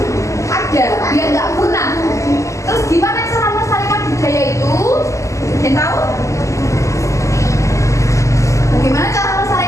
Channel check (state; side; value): late; right; 0.15 ms